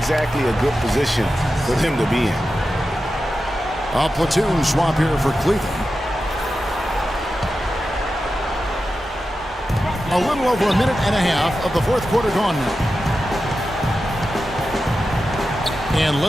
a good position for them to be in. A platoon swap here for Cleveland. A little over a minute and a half of the fourth quarter gone now. And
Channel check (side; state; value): both; normal; correlation 0.91